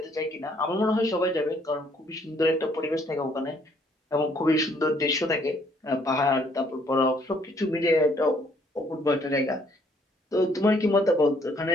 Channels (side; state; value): both; normal; correlation 0.65